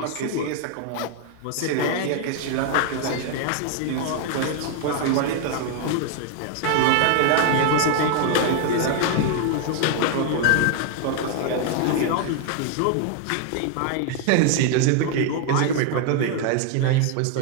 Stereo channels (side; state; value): both; different; correlation 0.00